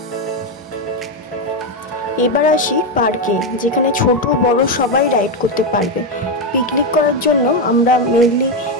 এবার আসি পার্কে, যেখানে ছোট বড় সবাই রাইড করতে পারবে। পিকনিক করার জন্য আমরা মেনলি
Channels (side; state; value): both; normal; correlation 0.07